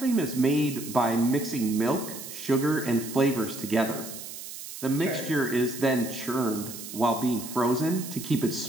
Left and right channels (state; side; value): noise; right; hiss, 11 dB below the sound